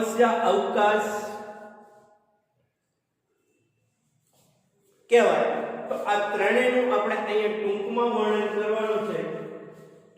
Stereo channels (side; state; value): both; identical; correlation 1.00